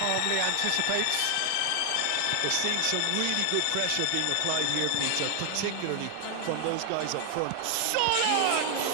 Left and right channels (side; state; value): both; different; correlation 0.00